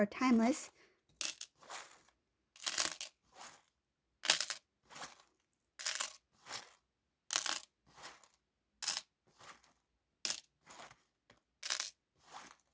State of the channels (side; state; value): both; identical; correlation 1.00